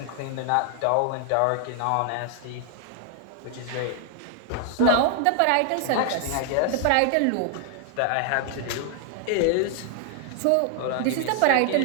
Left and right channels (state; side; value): different; both; correlation 0.00